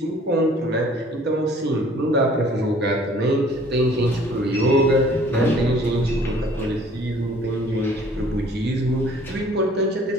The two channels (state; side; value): normal; both; correlation 0.54